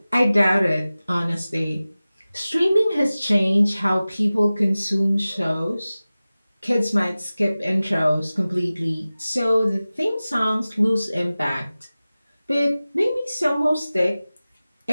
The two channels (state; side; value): inverted; both; correlation -0.97